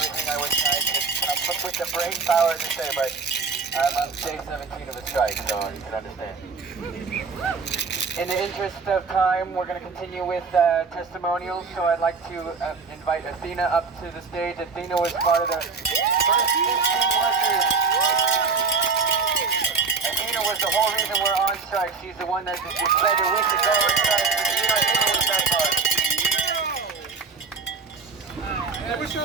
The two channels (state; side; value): quieter; left; 4.8 dB